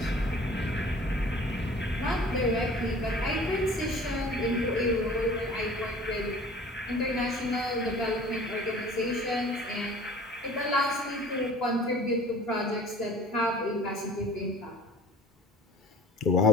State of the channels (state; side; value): normal; both; correlation 0.47